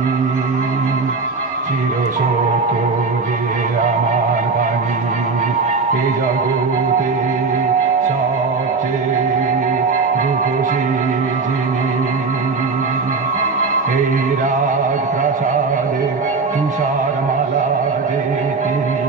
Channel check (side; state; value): left; quieter; 4.4 dB